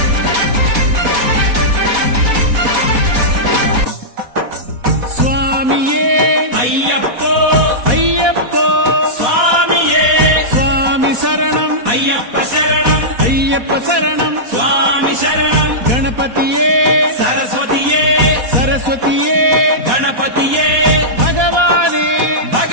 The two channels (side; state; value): left; late; 4.1 ms